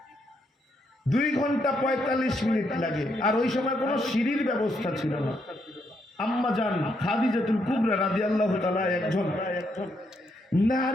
2 ঘন্টা 45 মিনিট লাগে। আর ওই সময় কোনো সিঁড়ির ব্যবস্থা ছিল না। আম্মা জান খাদিজাতুল কুবরা রাদিয়াল্লাহু তাআলা একজন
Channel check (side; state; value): both; normal; correlation 0.77